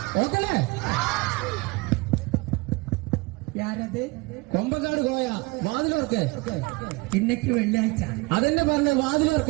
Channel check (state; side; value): quieter; left; 24.8 dB